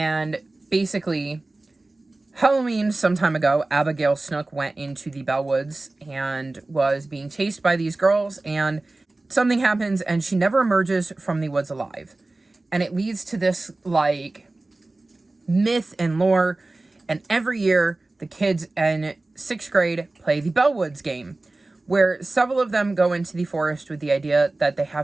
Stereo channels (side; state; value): left; quieter; 3.0 dB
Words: basically, Halloween, some time ago, Abigail Snook went into the Bellwoods and was being chased by these girls, and something happens and she never emerges from the woods alive. And it leads to this, like, myth and lore. And every year, the kids in 6th grade play the Bellwoods Game, where several of them go into the forest with the idea that they